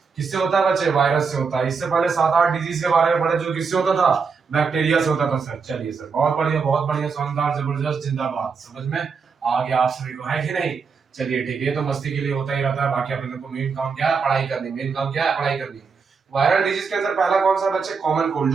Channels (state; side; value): quieter; left; 5.4 dB